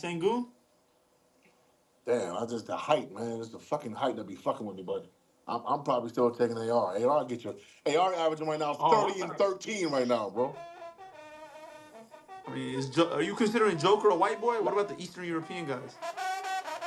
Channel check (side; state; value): both; identical; correlation 1.00